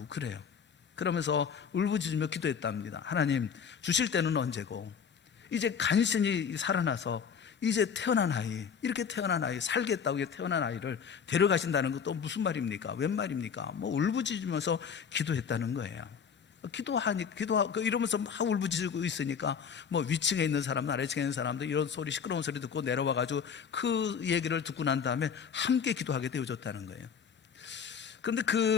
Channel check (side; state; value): right; quieter; 6.9 dB